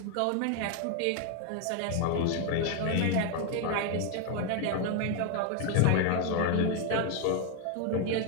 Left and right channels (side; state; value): both; different; correlation 0.01